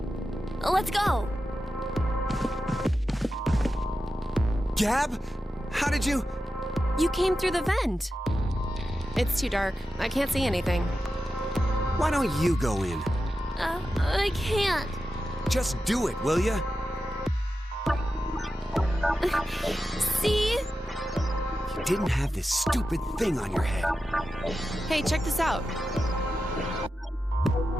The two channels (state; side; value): normal; both; correlation 0.91